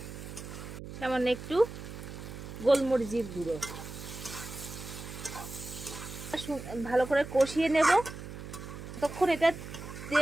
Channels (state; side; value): noise; right; hum, 11 dB below the sound